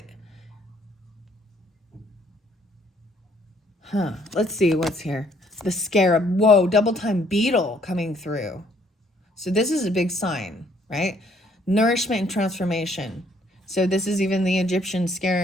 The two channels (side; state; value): both; normal; correlation 0.65